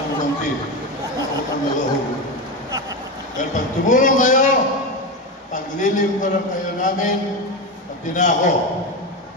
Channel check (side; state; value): both; normal; correlation 0.17